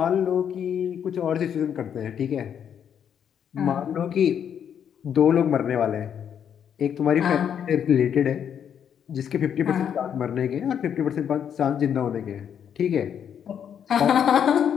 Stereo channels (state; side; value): quieter; right; 8.5 dB